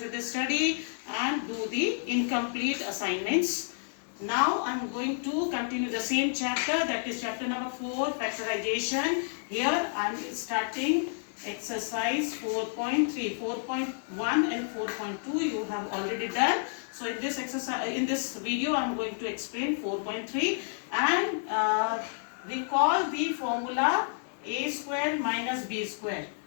the study and do the incomplete assignments. Now I am going to continue the same chapter, that is chapter number 4, factorization. Here I am starting exercise 4.3, 4.1 and 4.2 you have already done. So in this exercise, in this video I am going to explain 4.3 and recall the formula a square minus b square.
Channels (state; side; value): silent; right; digital silence